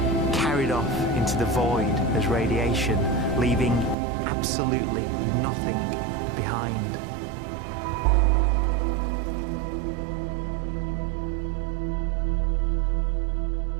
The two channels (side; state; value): left; drops out; at 4.0 s